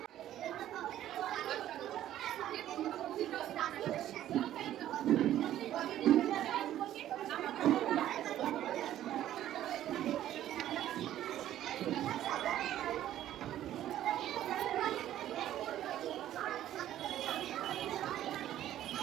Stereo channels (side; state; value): left; quieter; 12.4 dB